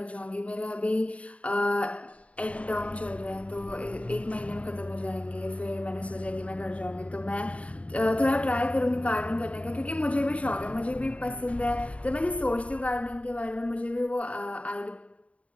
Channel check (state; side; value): late; right; 0.065 ms